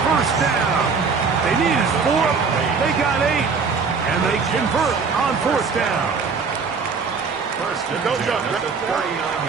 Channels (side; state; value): left; quieter; 5.1 dB